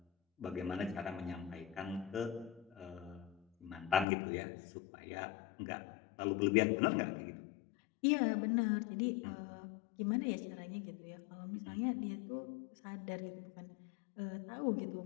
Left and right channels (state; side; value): drops out; right; at 4.0 s